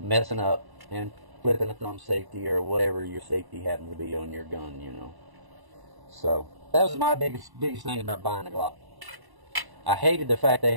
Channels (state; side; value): late; left; 1.1 ms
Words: up and flipping a thumb safety or whatever your safety happens to be on your gun, you know. So that was my biggest thing about buying a Glock. I hated the fact they